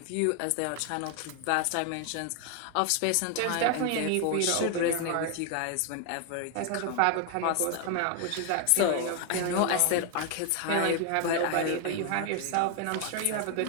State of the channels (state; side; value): different; both; correlation 0.00